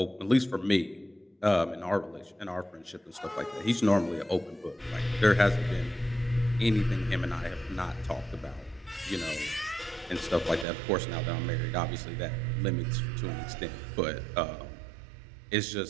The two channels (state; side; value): drops out; left; at 10.7 s